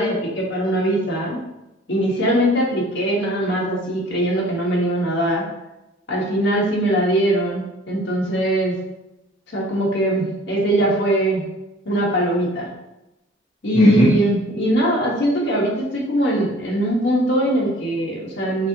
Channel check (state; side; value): normal; both; correlation 0.51